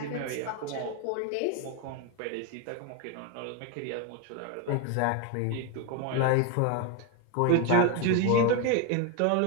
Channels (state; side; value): different; both; correlation 0.02